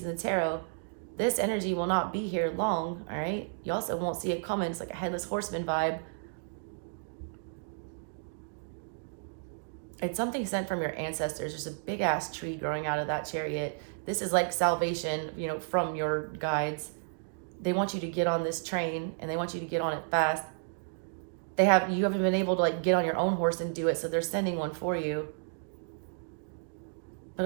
in the tarot. This energy will not be here long, all right? You also won't see it coming. It's like a headless horseman vibe. It's something sent from your ancestors. There's a big ass tree growing out of that Chariot. This is like salvation, you know, from your guides. They want you to get on this train, and they want you to get on it fast. you haven't been able to like get on your own horse and do it, so they're sending one for you. But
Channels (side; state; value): left; silent; digital silence